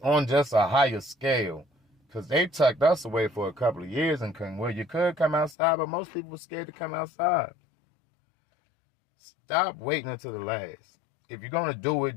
on just a higher scale. Because they tucked us away for a couple of years and couldn't. Well, you could come outside, but most people were scared to come outside. Stop waiting until the last. If you're going to do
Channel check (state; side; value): drops out; right; at 5.6 s